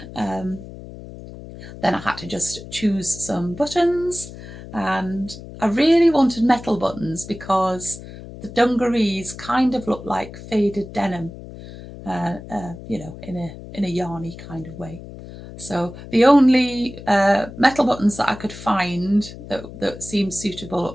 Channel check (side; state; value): left; noise; hum, 14 dB below the sound